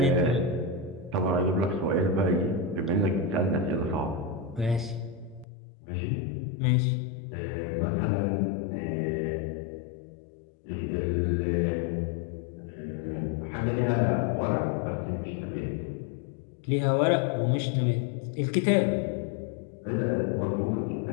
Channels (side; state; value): right; drops out; at 5.5 s